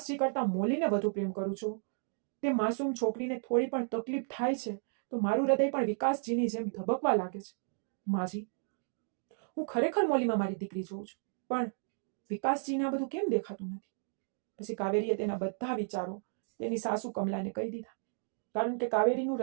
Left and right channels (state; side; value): silent; left; digital silence